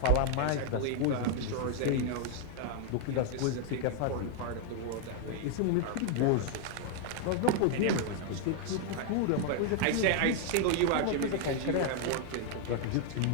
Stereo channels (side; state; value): both; different; correlation 0.00